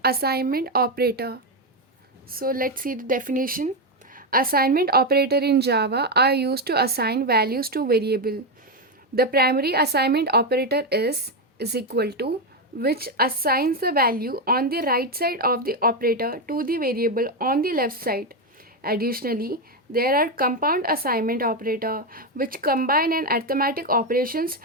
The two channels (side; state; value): both; normal; correlation 0.08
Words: assignment operator. So let's see the definition. Assignment operator in Java are used to assign values to variable. The primary assignment operator is equal to, which assigns the value on the right side of the operator to the variable on the left side. Additionally, there are compound assignment operator which combine an arithmetic operations